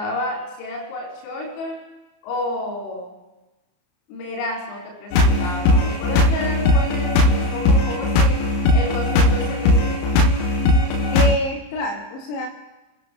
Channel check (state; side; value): late; right; 34 ms